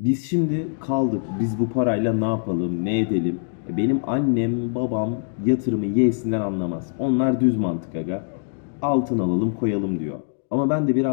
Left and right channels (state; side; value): silent; right; digital silence